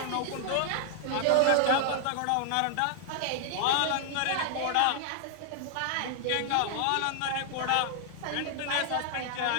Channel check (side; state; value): both; different; correlation 0.00